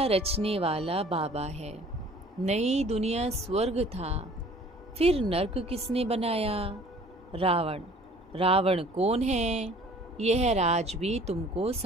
रचने वाला बाबा है। नई दुनिया स्वर्ग था, फिर नर्क किसने बनाया? रावण। रावण कौन है यह राज भी तुमको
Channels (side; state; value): both; normal; correlation 0.52